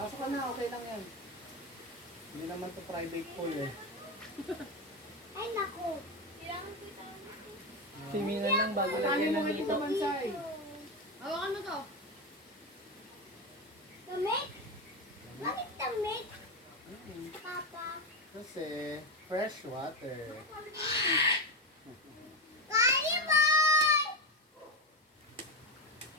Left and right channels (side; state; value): both; normal; correlation 0.14